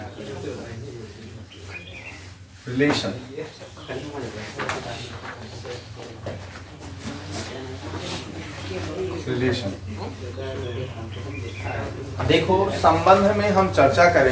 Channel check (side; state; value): both; identical; correlation 1.00